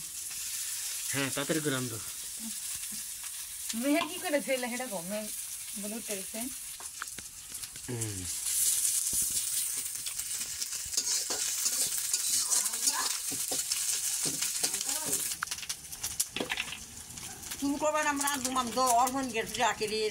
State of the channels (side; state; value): both; identical; correlation 1.00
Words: হ্যাঁ তাড়াতাড়ি করে রান্ধো মেয়ে কি করে ছেলে হেটা কমে বলে উঠতেছে তুমি করবেন আমরা দুমাম তো অর্পণ গেছে আখেরি